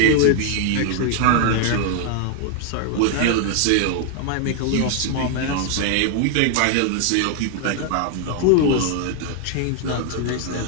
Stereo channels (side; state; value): both; different; correlation 0.00